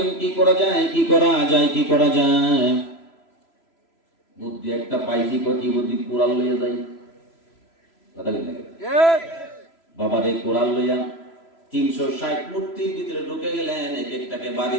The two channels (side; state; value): right; late; 3.0 ms